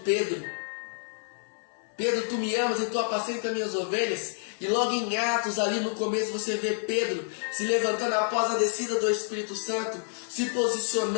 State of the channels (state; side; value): silent; right; 59 dB below the other